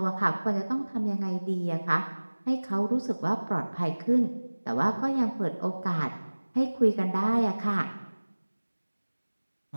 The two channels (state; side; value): inverted; both; correlation -1.00